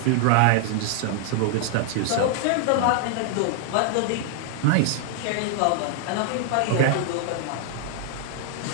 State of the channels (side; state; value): both; different; correlation 0.00